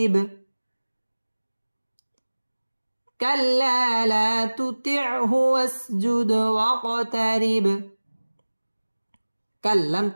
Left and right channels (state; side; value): inverted; both; correlation -1.00